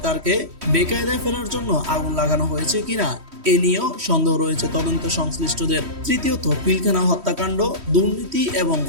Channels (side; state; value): left; late; 3.1 ms